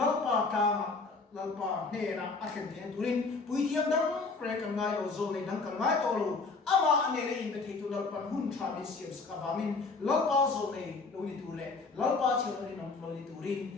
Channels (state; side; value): quieter; right; 4.1 dB